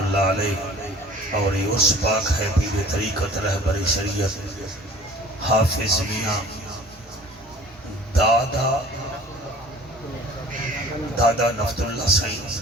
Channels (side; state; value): both; normal; correlation 0.47